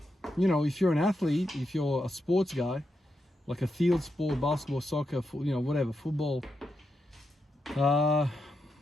if you're an athlete, if you're a sports guy, like a field sport, basketball, soccer, whatever, football, I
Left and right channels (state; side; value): normal; both; correlation 0.85